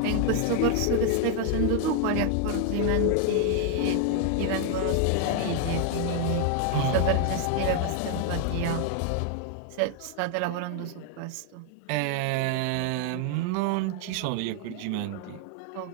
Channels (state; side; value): different; both; correlation 0.00